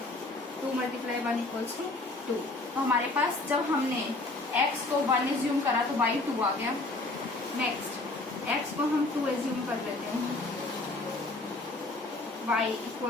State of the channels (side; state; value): right; quieter; 3.0 dB